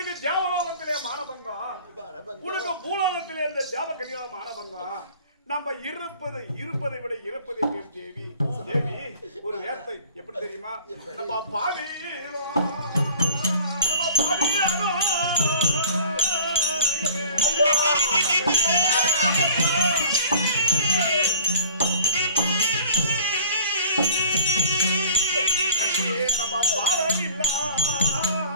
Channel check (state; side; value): inverted; both; correlation -0.48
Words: தேவலோகத்திலே மானபங்கம், உனக்கு பூலோகத்திலே இந்த தேவகன்யா மானபங்கம். நம்ம இருப்பதை விட இறப்பதை பேர் தேவி. தேவி ஒரு வேர்த்தை எப்படி தெரியுமா? நம்ம பாவியிலோ நம்ம பாவமில்லா